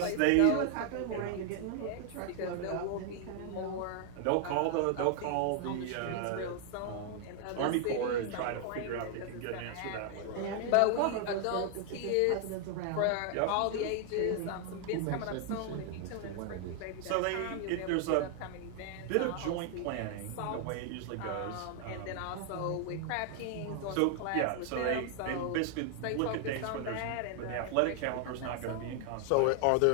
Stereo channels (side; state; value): both; different; correlation 0.00